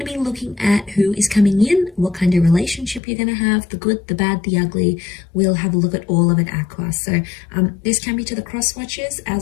be looking at who is coming in, what kind of relationship you're going to have, the good, the bad, the ugly. We'll have a look at all of it Aqua. So this can be to the cross watchers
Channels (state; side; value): drops out; right; at 3.0 s